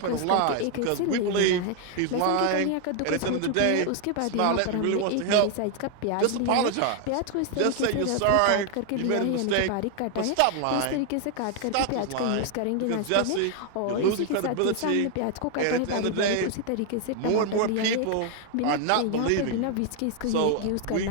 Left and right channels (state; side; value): different; both; correlation 0.00